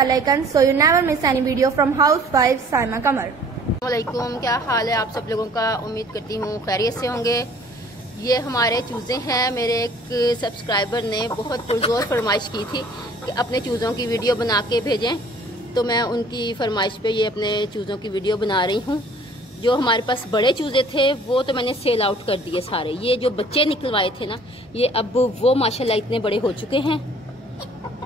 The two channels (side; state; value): both; normal; correlation 0.53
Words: icon so you never miss any video from housewife Saima Qamar। अस्सलामुअलैकुम, क्या हाल है आप सब लोगों का। उम्मीद करती हूँ खैरियत से होंगे। ये हमारे चूज़े हैं। मेरे एक सब्सक्राइबर ने बहुत पुरजोर फरमाइश की थी कि अपने चूज़ों की वीडियो बना के भेजें, तो मैं उनकी फरमाइश पे ये अपने चूज़ों की वीडियो बना रही हूँ। जो हमारे पास बड़े चूज़े थे वो तो मैंने सेल आउट कर दिए सारे। ये जो बच्चे निकलवाए थे ना, ये अब वो माशाल्लाह इतने बड़े हो चुके हैं